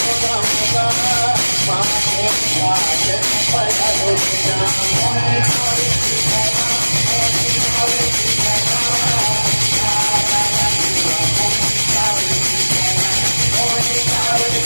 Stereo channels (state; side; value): inverted; both; correlation -1.00